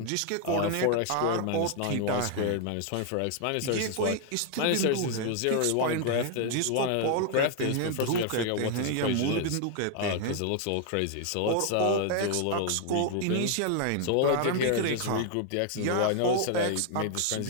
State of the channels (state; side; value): different; both; correlation 0.00